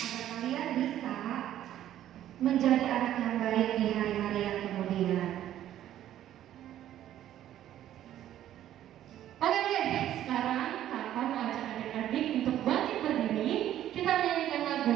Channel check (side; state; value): left; quieter; 12.0 dB